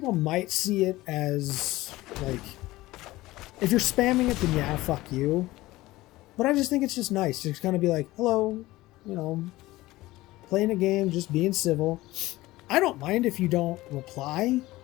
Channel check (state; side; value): quieter; right; 18.2 dB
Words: might see it as, like... If you're spamming it, then yeah, fuck you. But I just think it's just nice to kind of be like, hello, you know, playing a game, just being civil. I don't mind if you don't reply.